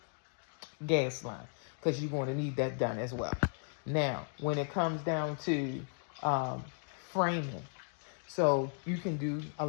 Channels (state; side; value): silent; right; 54 dB below the other